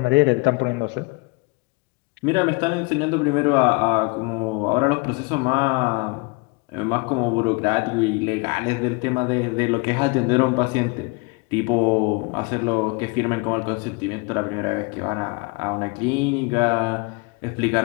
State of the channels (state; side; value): quieter; right; 28.4 dB